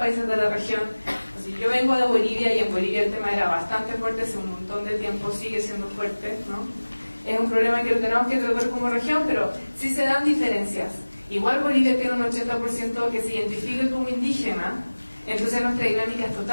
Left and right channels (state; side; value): inverted; both; correlation -1.00